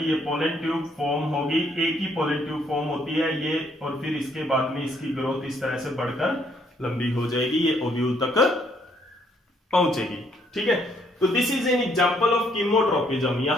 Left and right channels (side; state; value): both; normal; correlation 0.69